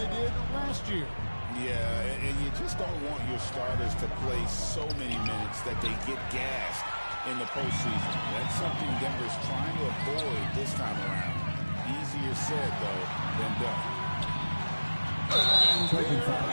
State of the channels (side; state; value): both; inverted; correlation -1.00